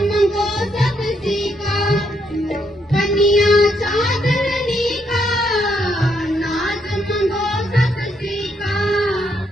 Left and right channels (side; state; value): both; normal; correlation 0.75